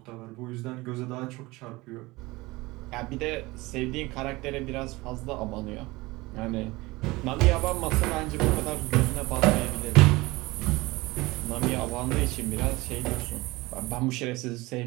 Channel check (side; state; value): left; quieter; 21.6 dB